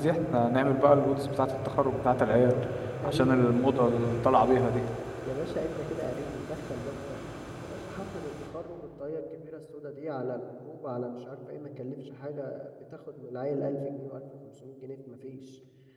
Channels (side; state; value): both; identical; correlation 1.00